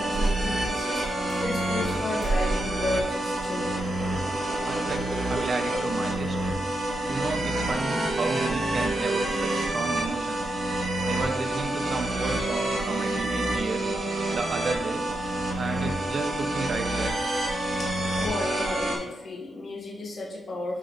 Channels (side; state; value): both; normal; correlation 0.85